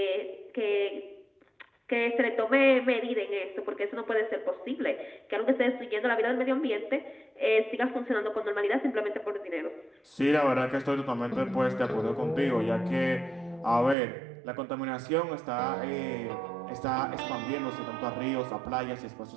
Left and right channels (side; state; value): left; drops out; at 14.0 s